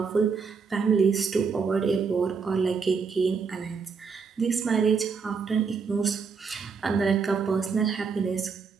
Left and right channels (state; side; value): quieter; left; 5.5 dB